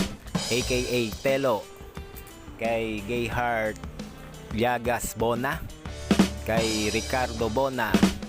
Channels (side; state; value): both; identical; correlation 1.00